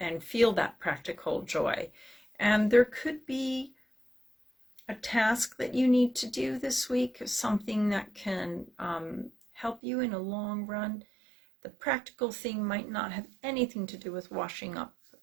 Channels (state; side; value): drops out; left; at 9.8 s